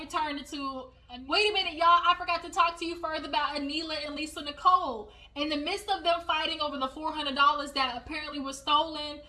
turned into, wait a minute, y'all, I forgot to talk to you further about Anila and Lisa Nicole. In the midst of them fighting over the $400 that apparently was stolen,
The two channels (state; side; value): identical; both; correlation 1.00